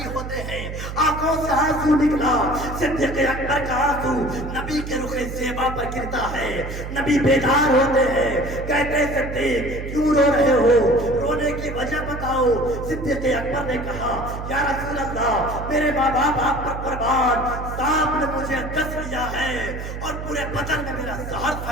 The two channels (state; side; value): noise; right; hum, 8 dB below the sound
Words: ہوتے ہیں, آنکھوں سے آنسو نکلا. صدیق اکبر کا آنسو نبی کے رخ زیبا پر گرتا ہے. نبی بیدار ہوتے ہیں, کہتے ہیں صدیق کیوں رو رہے ہو, رونے کی وجہ بتاؤ. صدیق اکبر نے کہا یا رسول اللہ, میرے ماں باپ آپ پر قربان, سانپ نے مجھے ڈس لیا ہے اور پورے بدن میں میرا زہر